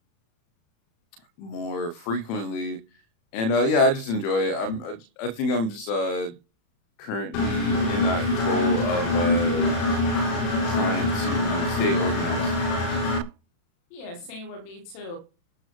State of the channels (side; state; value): right; late; 36 ms